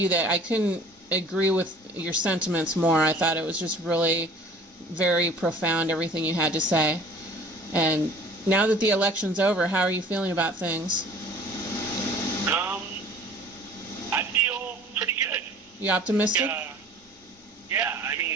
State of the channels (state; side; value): normal; both; correlation 0.48